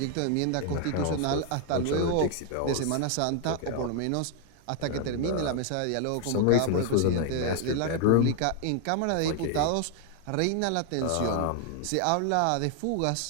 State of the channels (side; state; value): both; different; correlation 0.00